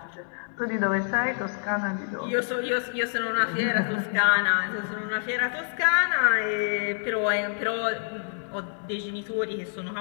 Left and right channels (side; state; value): right; silent; digital silence